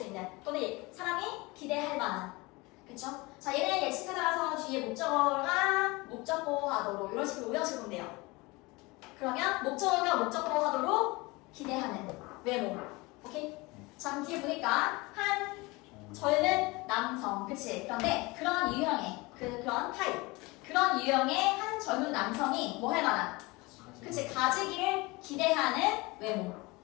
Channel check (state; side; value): quieter; right; 23.8 dB